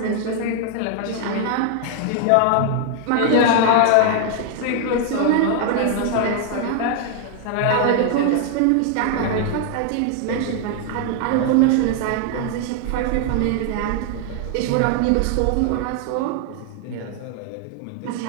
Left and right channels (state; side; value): different; both; correlation 0.00